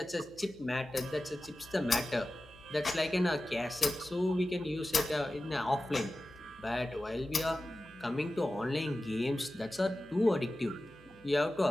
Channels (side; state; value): left; noise; hum, 25 dB below the sound